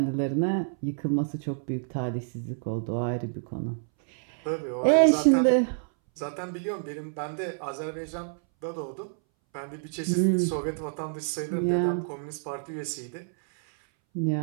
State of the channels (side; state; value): left; silent; 59 dB below the other